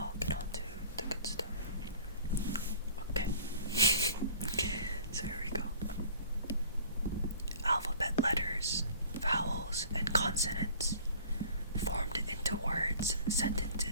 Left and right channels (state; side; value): inverted; both; correlation -0.48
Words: get on to the good stuff. Okay. So here we go. Alphabet letters, vowels, and consonants formed into words,